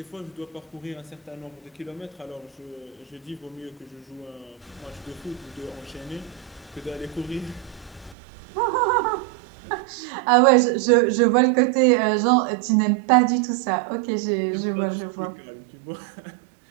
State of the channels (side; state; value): left; drops out; at 8.2 s